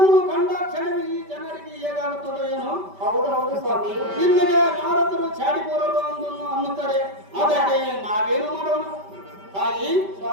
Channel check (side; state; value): left; late; 5.1 ms